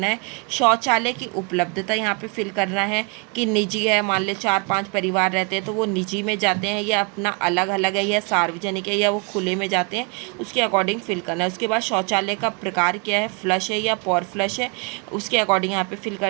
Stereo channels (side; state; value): left; quieter; 33.0 dB